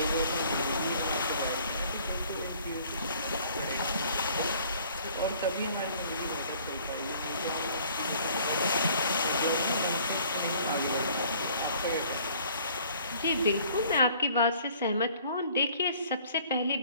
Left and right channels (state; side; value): inverted; both; correlation -0.55